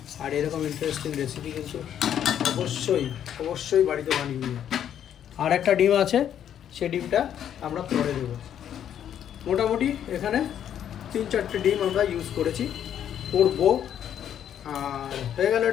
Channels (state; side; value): quieter; right; 9.8 dB